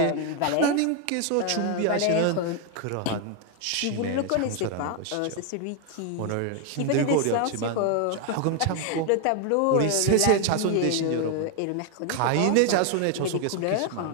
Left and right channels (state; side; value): different; both; correlation 0.01